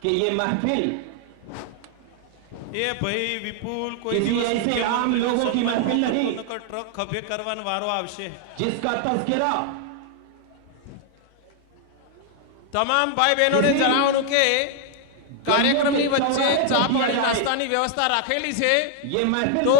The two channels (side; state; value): both; different; correlation 0.00